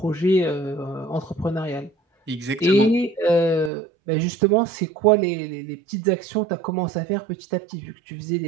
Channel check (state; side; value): drops out; left; at 3.7 s